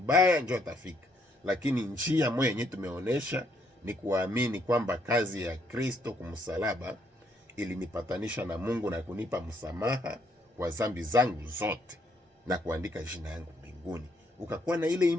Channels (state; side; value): normal; both; correlation 0.71